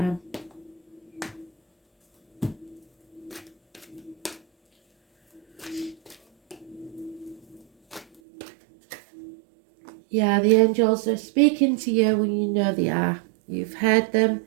Yeah, the angels are speaking to you when you know they are. You've heard them.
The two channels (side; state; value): left; drops out; at 8.2 s